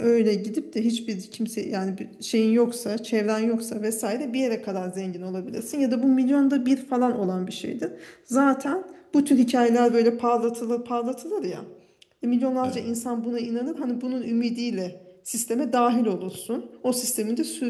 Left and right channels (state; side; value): identical; both; correlation 1.00